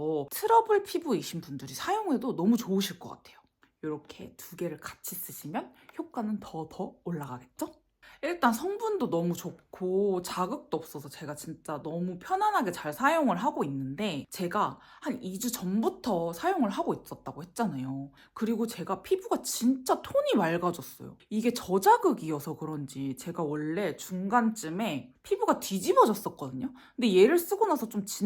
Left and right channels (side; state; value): both; identical; correlation 1.00